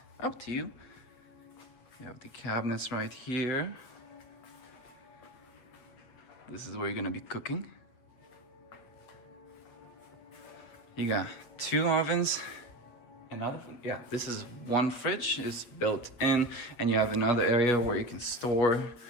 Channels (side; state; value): right; late; 8.0 ms